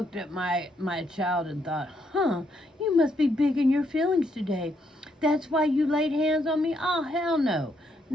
at my child and thought, you must be big in your feelings today. That's why you laid hands on me? Oh, hell no.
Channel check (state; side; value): normal; both; correlation 0.75